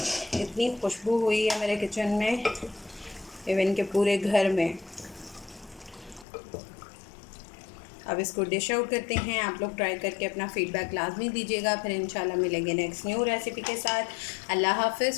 इतनी खुशबू हुई है मेरे किचन में, इवन के पूरे घर में। अब इसको डिश आउट करते हैं। आप लोग ट्राई करके अपना फ़ीडबैक लाजमी दीजिएगा। फिर इंशाल्लाह मिलेंगे नेक्स्ट न्यू रेसिपी के साथ। अल्लाह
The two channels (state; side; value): drops out; right; at 6.2 s